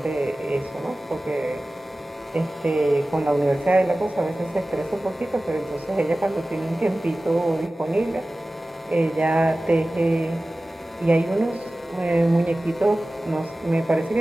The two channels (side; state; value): both; normal; correlation 0.97